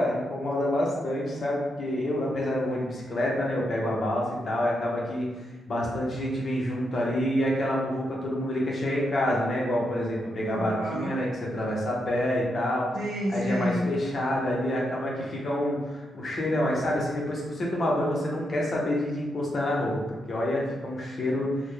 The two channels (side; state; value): both; normal; correlation 0.82